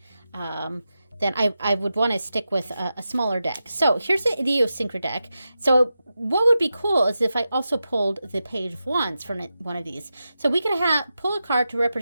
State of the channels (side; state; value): both; inverted; correlation -0.90